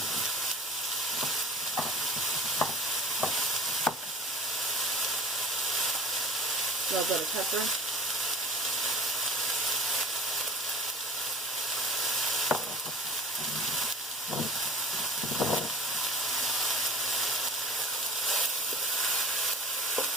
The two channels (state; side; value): normal; both; correlation 0.41